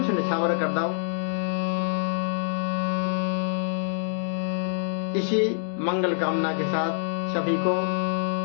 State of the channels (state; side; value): silent; right; digital silence